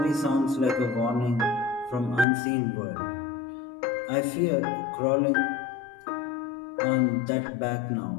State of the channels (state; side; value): drops out; right; at 2.2 s